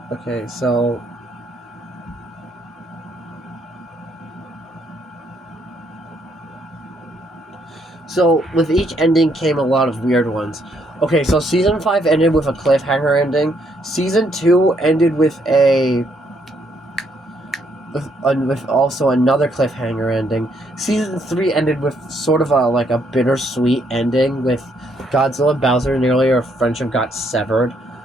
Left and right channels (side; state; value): both; normal; correlation 0.72